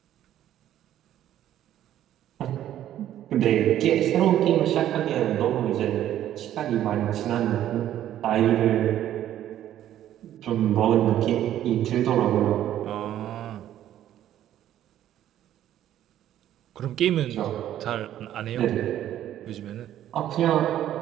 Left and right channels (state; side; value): quieter; left; 11.8 dB